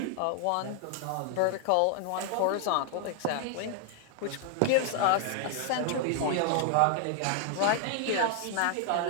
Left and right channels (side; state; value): both; different; correlation 0.00